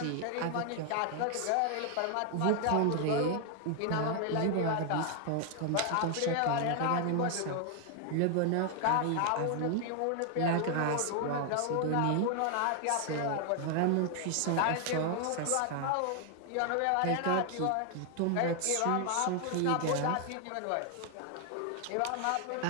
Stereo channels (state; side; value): different; both; correlation 0.00